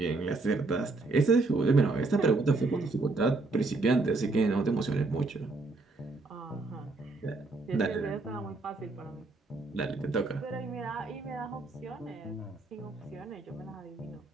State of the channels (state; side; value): quieter; left; 3.4 dB